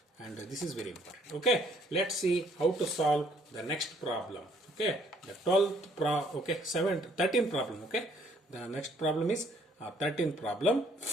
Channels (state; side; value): normal; both; correlation 0.64